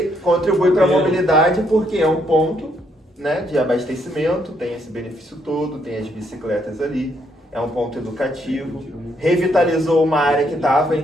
contribui para a mobilidade porque é um ponto, né, de abastecimento, tem esse benefício todo, tem as bicicletas ali, é um ponto educativo, revitalizou uma área que estava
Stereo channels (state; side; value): normal; both; correlation 0.73